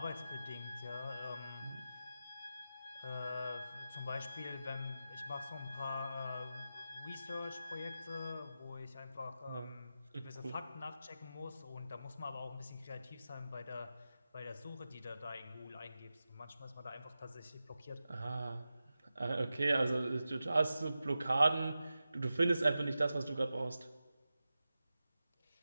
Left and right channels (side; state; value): both; inverted; correlation -0.92